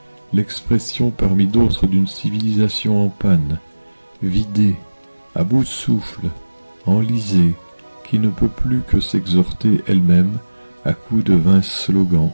l'expression parmi d'autres d'une civilisation en panne, vidée, à bout de souffle, enlisée, qui ne peut plus que s'exhorter elle-même, à coups de vains slogans,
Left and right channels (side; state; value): both; inverted; correlation -1.00